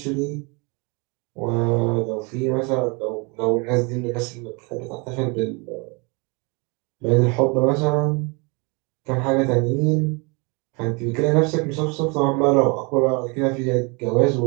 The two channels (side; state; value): left; quieter; 30.5 dB